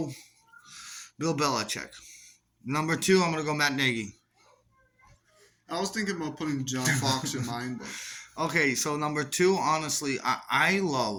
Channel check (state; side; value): identical; both; correlation 1.00